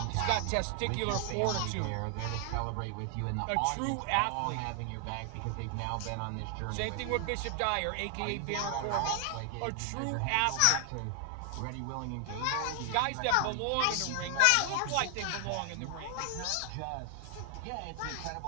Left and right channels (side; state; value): both; different; correlation 0.00